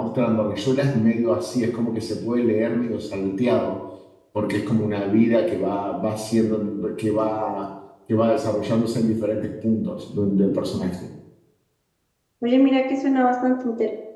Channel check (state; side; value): identical; both; correlation 1.00